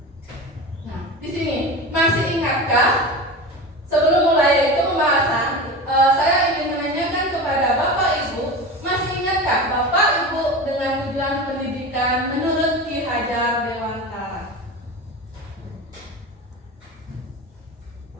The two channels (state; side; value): normal; both; correlation 0.28